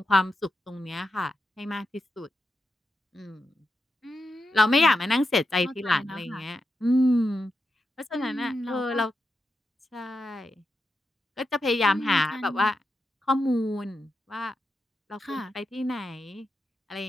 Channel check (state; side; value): normal; both; correlation 0.87